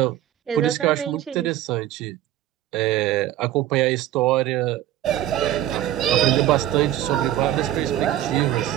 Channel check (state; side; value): quieter; left; 13.1 dB